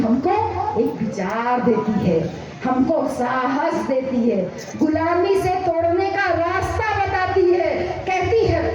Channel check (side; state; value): both; identical; correlation 1.00